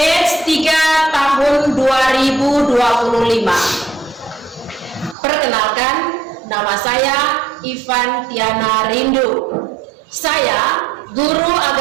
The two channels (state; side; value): drops out; left; at 5.2 s